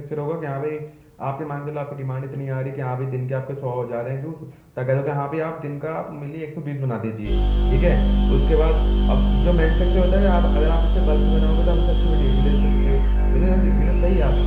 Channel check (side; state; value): both; identical; correlation 1.00